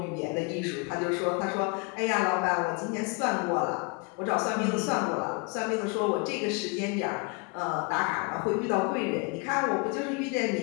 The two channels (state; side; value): quieter; right; 31.1 dB